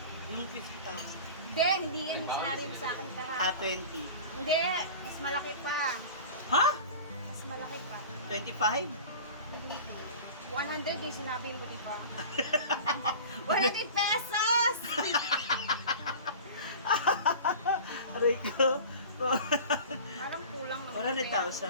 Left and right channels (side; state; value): both; inverted; correlation -0.37